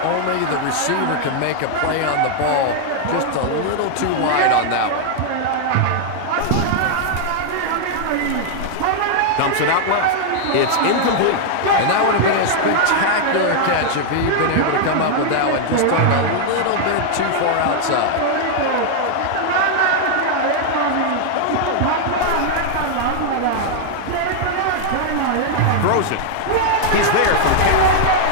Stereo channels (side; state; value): both; different; correlation -0.01